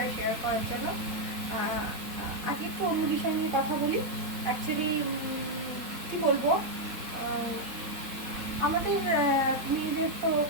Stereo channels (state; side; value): late; left; 4.1 ms